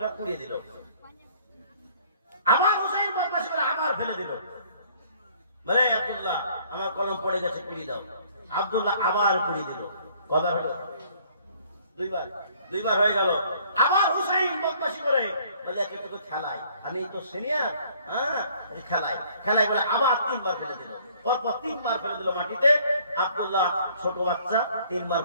উড়িয়ে দিল। আমার হুসাইন বদমাশি করে আবার ফেলে দিল, বলে আব্দুল্লাহ আমার কলম পড়ে গেছে, কুড়িয়ে দাও। আব্দুল্লাহ আবার কুড়িয়ে দিল। কথা হলো দুইবার হয়ে গেল। আবার হুসাইন বদমাশি করে বলে তোকে খেলায়, আমি তো সিনিয়র, হ্যাঁ খেলাই বলে আবার 3বার ফেলে দিল। পরপর 3বার ফেলে দিল মাটিতে। আব্দুল্লাহ ছোট বাচ্চা, 3বার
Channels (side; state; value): both; inverted; correlation -0.59